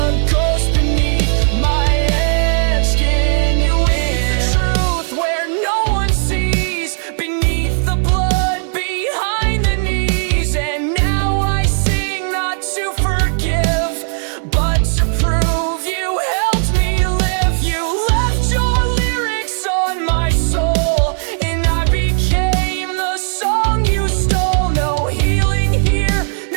ghost beneath my edge skin. You is the truth where no one sees, beneath the blood, behind the knees. And now I sing not to forgive, but to prove you helped me live. You left your lyrics on my soul, and I became the song you stole. No healing here,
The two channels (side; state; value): left; silent; 59 dB below the other